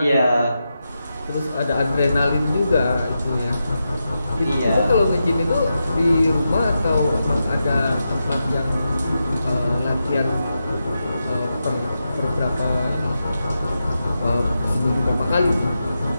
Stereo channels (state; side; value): inverted; both; correlation -0.88